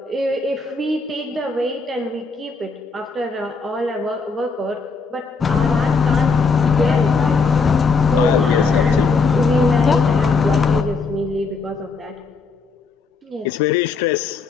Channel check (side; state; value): right; quieter; 4.5 dB